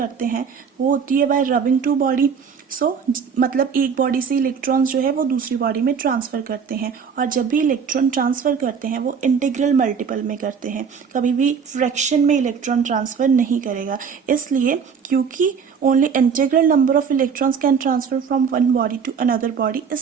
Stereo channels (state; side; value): quieter; left; 6.5 dB